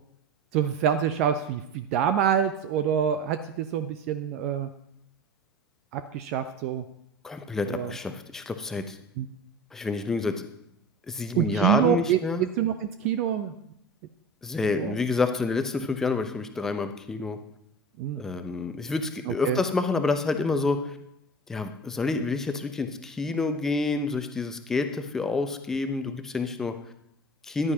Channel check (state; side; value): normal; both; correlation 0.36